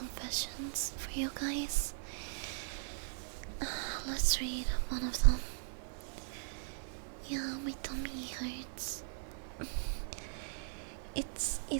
for you guys? Let's read one of them. Yeah, my tummy hurts. It's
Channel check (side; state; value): left; silent; 52 dB below the other